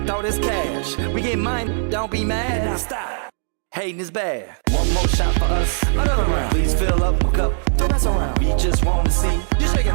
this cash. We get mine, don't be mad, now stop. Hating is bad. One more shot for us, another round. Please fill up my cup, don't mess around. We just want to see you shaking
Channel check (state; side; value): silent; left; digital silence